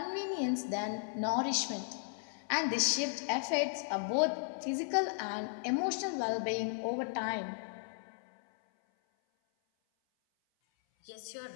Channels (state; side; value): silent; right; 54 dB below the other